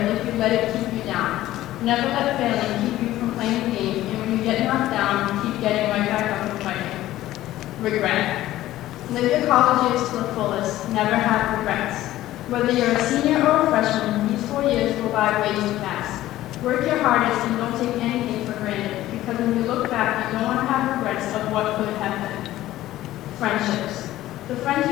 if you let it keep you down. Never let failing keep you from playing the game, and when you get knocked down, keep getting right back up and fighting. Regret. Live your college years to the fullest. Never have regrets. Whether you're a senior or a freshman, these 4 years go by way too fast. Work your hardest and don't take anything for granted, because when you look back, you don't want to have regrets of what could have been. Friendships. The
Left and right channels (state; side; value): quieter; right; 14.9 dB